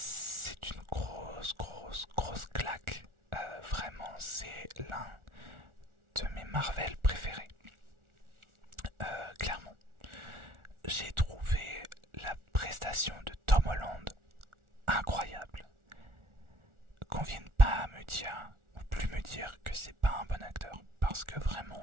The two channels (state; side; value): late; left; 1.4 ms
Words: une grosse claque. Vraiment, c'est l'un de mes Marvel préférés. Clairement. J'ai trouvé la prestation de Tom Holland incroyable. Qu'on vienne pas me dire, ou plus me dire que c'est pas un bon acteur. Parce que